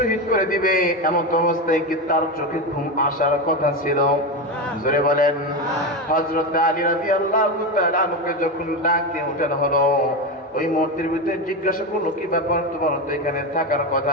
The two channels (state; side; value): normal; both; correlation 0.16